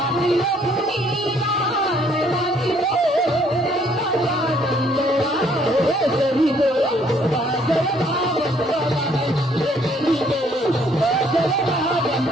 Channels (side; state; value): both; normal; correlation 0.64